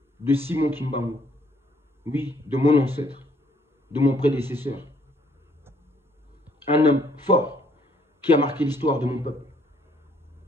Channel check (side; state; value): both; normal; correlation 0.66